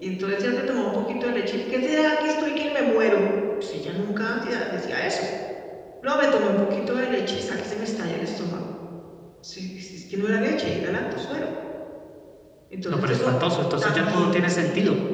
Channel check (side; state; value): both; identical; correlation 1.00